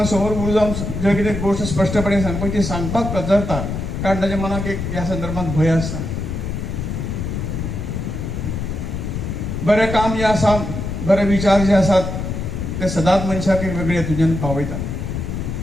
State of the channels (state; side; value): noise; left; rumble, 4 dB below the sound